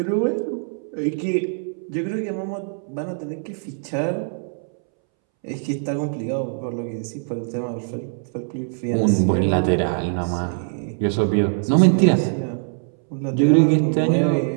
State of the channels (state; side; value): silent; left; 64 dB below the other